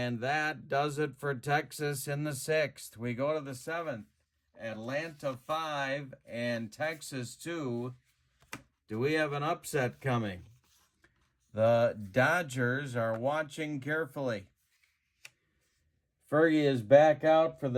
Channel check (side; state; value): both; identical; correlation 1.00